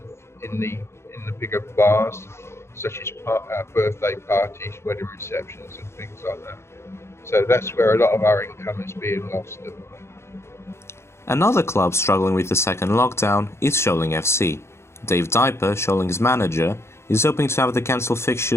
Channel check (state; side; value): late; right; 0.13 ms